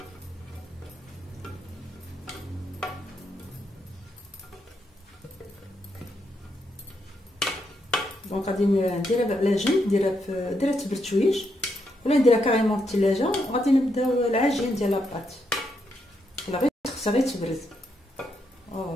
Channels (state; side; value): normal; both; correlation 0.80